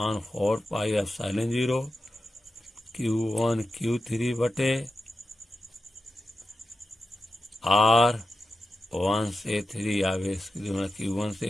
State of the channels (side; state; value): both; normal; correlation 0.91